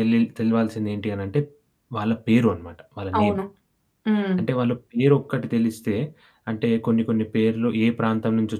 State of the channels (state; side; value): identical; both; correlation 1.00